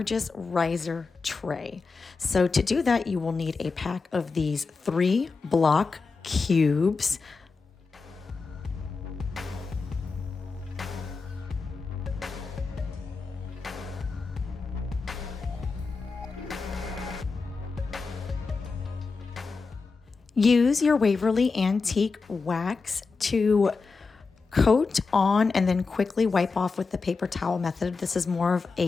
riser tray. So to do that, you will need a pack of these 3 block cubes. Use your Waverly Antique wax to coat on and then quickly wipe off with the paper towel method. This is more of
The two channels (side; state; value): right; quieter; 4.4 dB